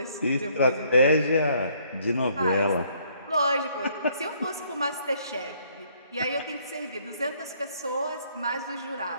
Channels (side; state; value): both; inverted; correlation -0.65